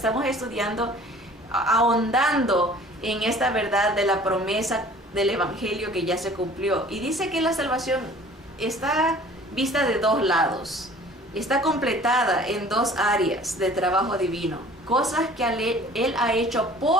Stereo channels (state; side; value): normal; both; correlation 0.49